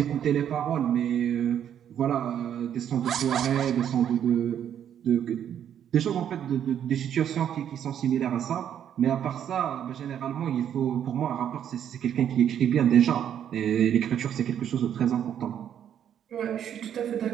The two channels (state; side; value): quieter; left; 9.5 dB